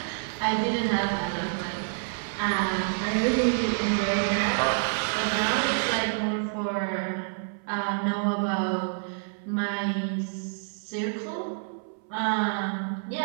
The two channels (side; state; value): left; silent; 59 dB below the other